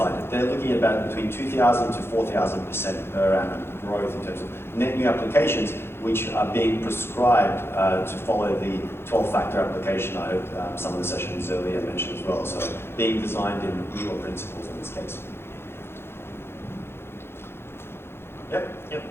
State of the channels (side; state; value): right; late; 0.11 ms